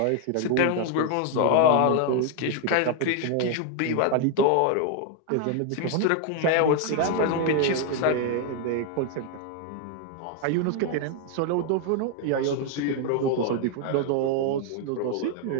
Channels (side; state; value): both; different; correlation 0.00